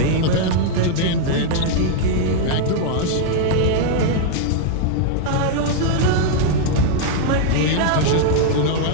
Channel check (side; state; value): both; different; correlation -0.01